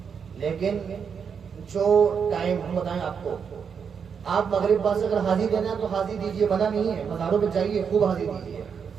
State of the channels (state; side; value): quieter; left; 6.7 dB